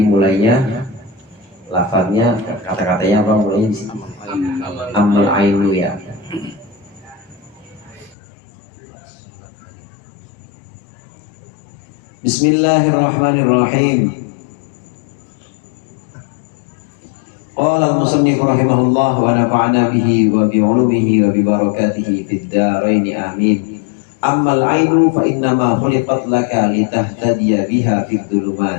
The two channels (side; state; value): right; drops out; at 8.2 s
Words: mulainya lafadznya, kata-katanya apa mulainya di sini? Amal ainu ya. Bismillahirrahmanirrahim. Qala al-musannif rahimahullah wa nafa'ana bihi wa bi 'ulumihi wa bi barakatihi fid dharain amin. Ammal 'ainu fa innama khuliqat laka litahtadiya biha fid